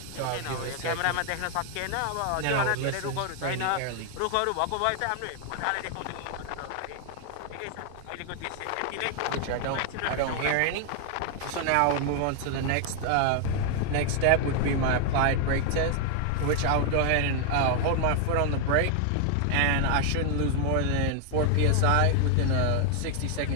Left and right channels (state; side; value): different; both; correlation 0.00